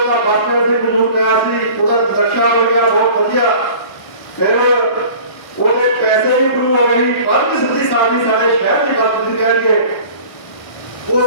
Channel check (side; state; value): right; late; 1.1 ms